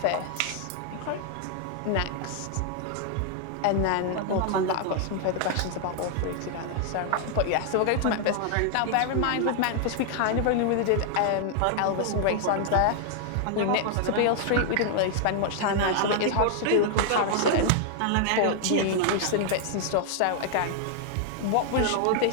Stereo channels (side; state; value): both; different; correlation 0.00